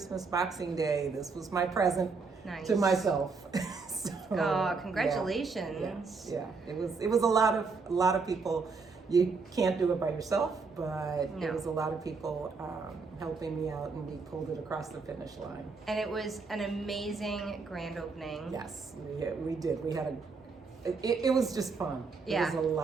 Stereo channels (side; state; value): left; quieter; 4.6 dB